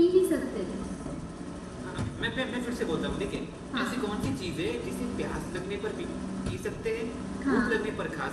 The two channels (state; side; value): identical; both; correlation 1.00